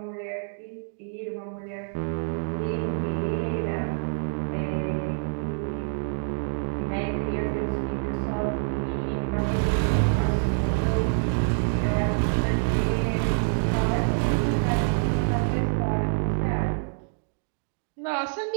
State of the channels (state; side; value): silent; left; digital silence